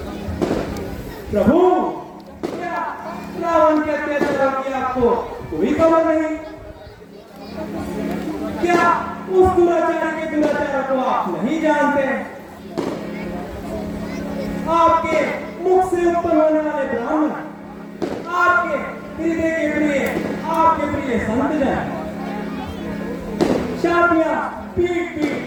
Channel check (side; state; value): both; identical; correlation 1.00